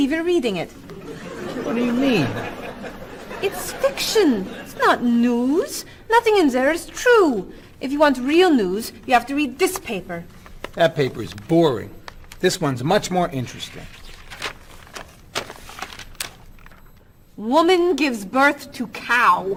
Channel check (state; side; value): identical; both; correlation 1.00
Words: you're reading it. What do you mean? It's fiction. It's not news. Nothing in there is true. If you want real news, you have to read this paper. That paper is boring. This one's much more interesting. Woman gives birth to cow.